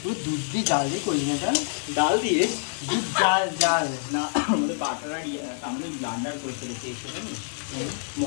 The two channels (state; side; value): silent; right; 58 dB below the other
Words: ও দুধ দিয়ে জাল দিয়ে করলি না? এটা ডাল দিয়ে দুধ জাল না, আমাদের বাটার আর আমি ব্লান্ডার করে ফেলেছি।